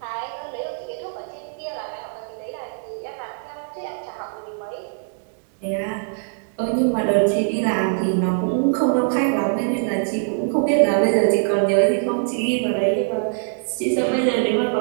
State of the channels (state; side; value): silent; left; digital silence